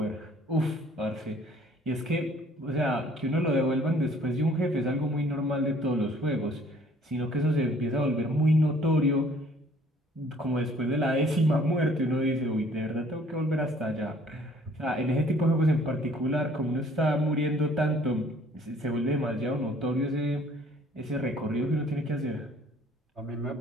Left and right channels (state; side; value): normal; both; correlation 0.57